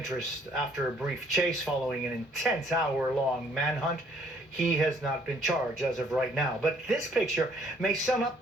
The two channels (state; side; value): normal; both; correlation 0.63